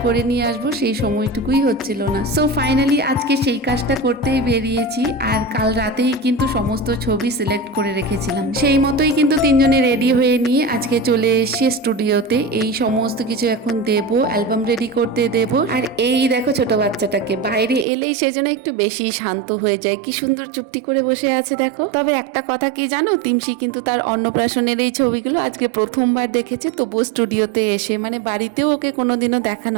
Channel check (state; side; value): drops out; left; at 17.9 s